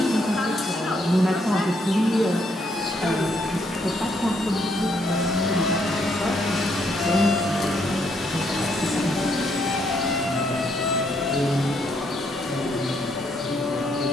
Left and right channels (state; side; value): normal; both; correlation 0.73